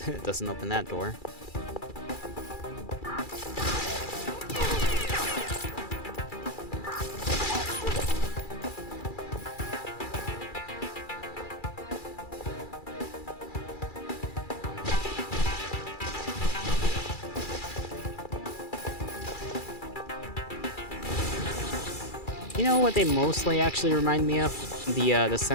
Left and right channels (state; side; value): late; right; 2.3 ms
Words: doesn't open that door. You know what they mostly actually remind me of? The